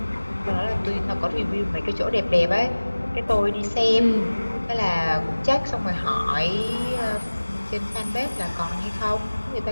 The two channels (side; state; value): both; inverted; correlation -1.00